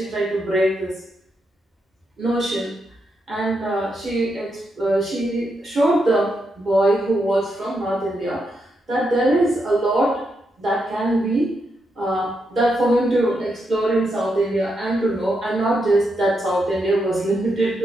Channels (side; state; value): both; normal; correlation 0.82